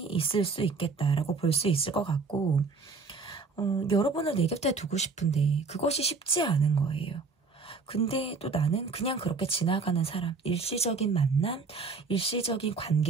있을 수 있겠다라고 볼 수 있을 것 같고 여러분을 내 곁에 두고 싶은데 그것이 쉽지 않은 거예요. 근데 또 나는 그냥 그렇게 지나가는 사람, 일시적인 만남, 일시적인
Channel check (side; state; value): left; quieter; 4.4 dB